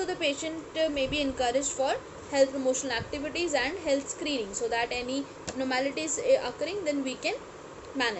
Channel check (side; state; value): both; identical; correlation 1.00